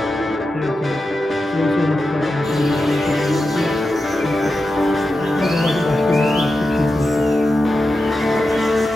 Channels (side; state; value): both; normal; correlation 0.90